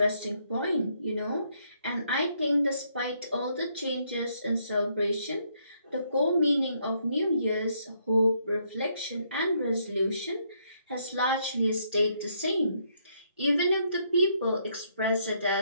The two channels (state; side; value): inverted; both; correlation -0.72